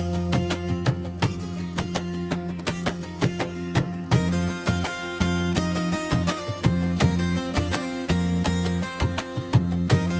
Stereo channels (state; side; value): identical; both; correlation 1.00